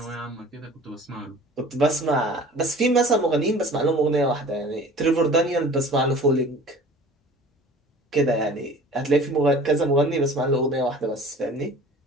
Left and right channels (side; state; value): both; normal; correlation 0.45